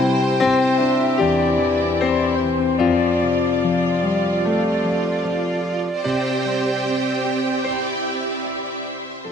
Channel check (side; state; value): both; normal; correlation 0.66